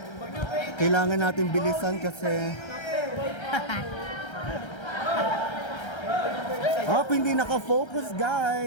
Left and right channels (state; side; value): late; right; 1.3 ms